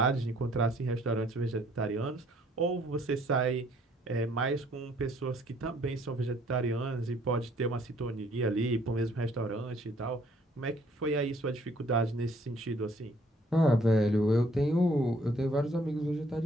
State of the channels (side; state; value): both; normal; correlation 0.62